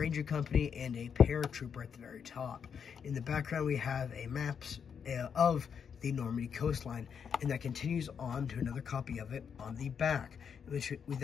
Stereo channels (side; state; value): right; quieter; 7.1 dB